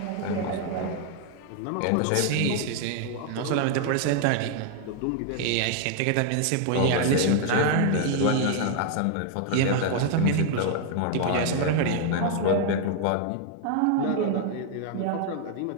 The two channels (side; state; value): both; different; correlation 0.00